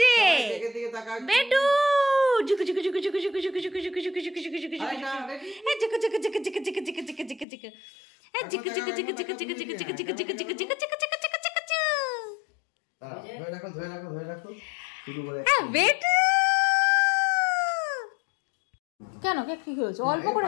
যে দিকে দিকে তাকাও। বেটু, জুকু জুকু জুকু জুকু জুকু জুকু জুকু জুকু জুকু জুকু জুকু জুকু জুকু আরেকটা, ready? এই জুকু জুকু জুকু জুকু জুকু জুকু জুকু জুকু জুকু এই জুকু জুকু জুকু জুকু জুকু জুকু জুকু জুকু জুকু জুকু জুকু জুকু জুকু দাঁড়াও, ধরে রাখো, ধরে রাখো, ধরে রাখো। শুরু করে। বেটু। কেন কেক কি হয়েছে? অল্প করে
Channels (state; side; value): drops out; right; at 7.5 s